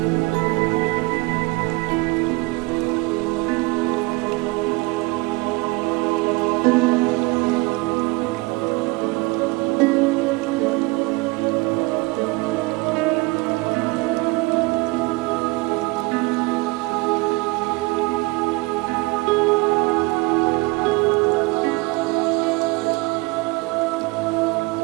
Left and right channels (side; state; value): left; quieter; 25.0 dB